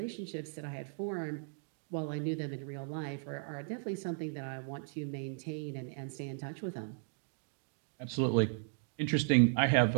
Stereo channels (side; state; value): left; silent; digital silence